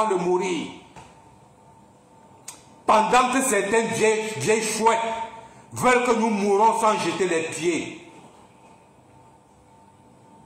de mourir. Pendant que certaines vieilles chouettes veulent que nous mourons sans jeter les pieds.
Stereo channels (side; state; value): both; identical; correlation 1.00